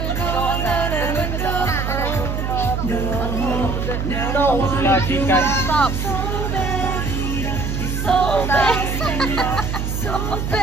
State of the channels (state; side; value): noise; right; hum, 2 dB below the sound